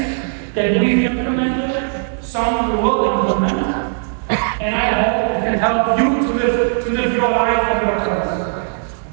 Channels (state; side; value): silent; left; digital silence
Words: that we've implemented, some we will implement, and I hope it can help you to live your life and your purpose.